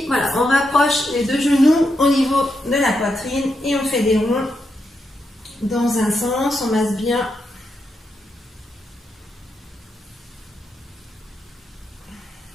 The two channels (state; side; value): normal; both; correlation 0.83